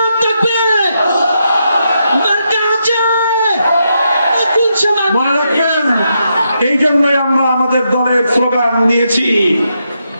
মনে রাখবেন, এই জন্যই আমরা আমাদের দলের স্লোগান নিয়েছি,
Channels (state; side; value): inverted; both; correlation -0.82